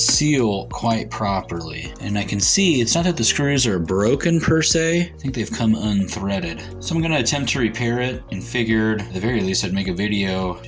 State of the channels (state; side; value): identical; both; correlation 1.00